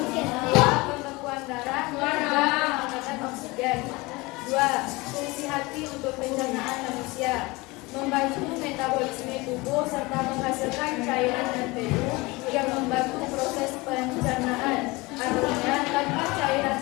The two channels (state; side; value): quieter; right; 23.3 dB